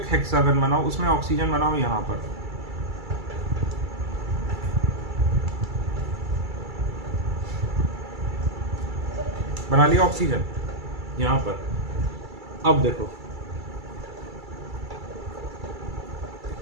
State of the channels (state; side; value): late; left; 2.3 ms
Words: हेक्सागन बनाओ, उसमें ऑक्सीजन बनाओ यहां पर, बना लिया ऑक्सीजन यहां पर। अब देखो